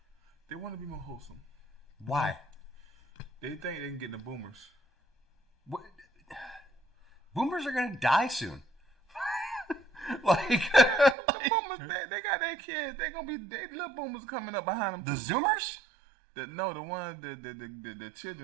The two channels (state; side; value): drops out; left; at 11.2 s